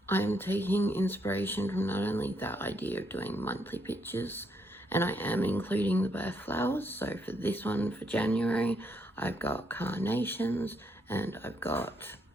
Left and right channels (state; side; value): normal; both; correlation 0.75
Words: taking inspiration from not only that idea of doing monthly pictures, and I am including the birth flowers. So for this one, for January, I've got carnations and I've got